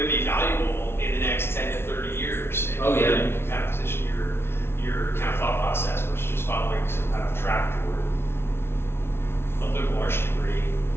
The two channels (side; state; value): right; late; 0.12 ms